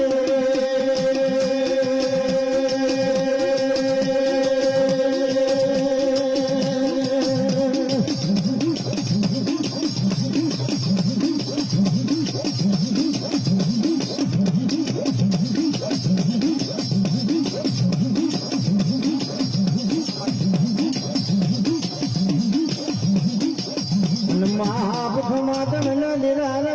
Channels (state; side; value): identical; both; correlation 1.00